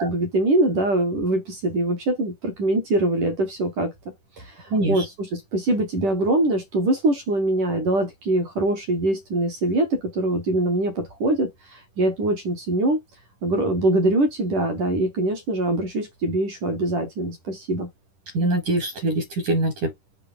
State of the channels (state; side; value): late; left; 10 ms